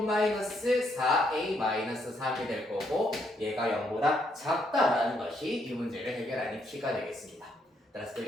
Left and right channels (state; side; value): normal; both; correlation 0.74